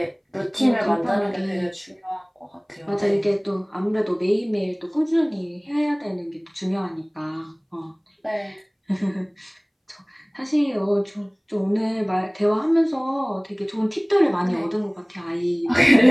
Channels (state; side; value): identical; both; correlation 1.00